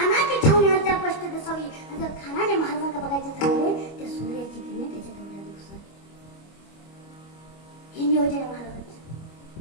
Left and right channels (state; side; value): late; right; 25 ms